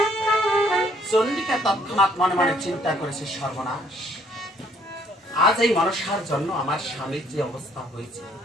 চন্ডিকা তৎক্ষণাৎ মনে মনে চিন্তা করেছে, সর্বনাশ, আজ এই মনসার জন্য আমার স্বামীর যে অবস্থা হয়েছে,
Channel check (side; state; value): both; normal; correlation 0.64